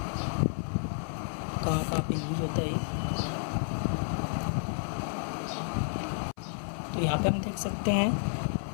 कहाँ कहाँ पे यूज होता है। तो यहाँ पे हम देख सकते हैं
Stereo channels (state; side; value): silent; right; 57 dB below the other